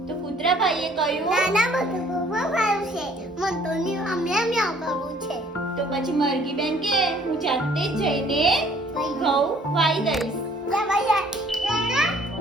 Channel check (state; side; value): normal; both; correlation 0.58